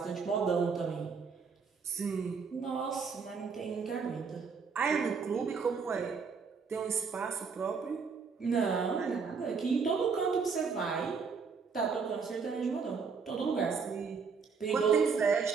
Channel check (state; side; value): quieter; left; 5.4 dB